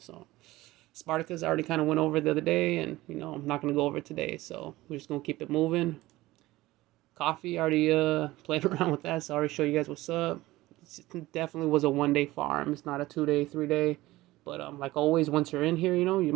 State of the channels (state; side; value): quieter; left; 18.0 dB